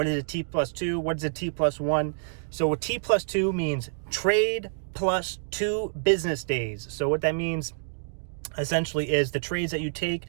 is a T+2? What is a T+1? So a T+2 means trade plus 2 business days. So what that means essentially is the trades that you take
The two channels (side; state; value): left; silent; digital silence